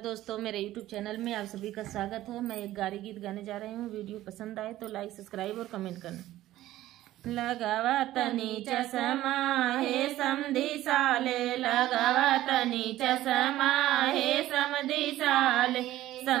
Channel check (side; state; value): left; quieter; 14.8 dB